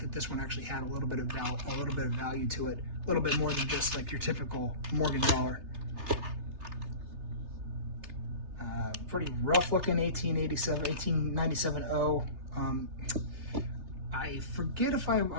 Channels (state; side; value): late; left; 3.3 ms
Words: that this one actually had a little bit of value to it, a little bit more than just like your typical Morgan dollar. Pretty rough looking 1897-0. I forget if I